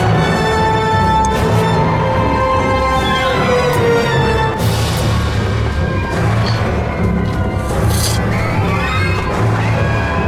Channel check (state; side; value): identical; both; correlation 1.00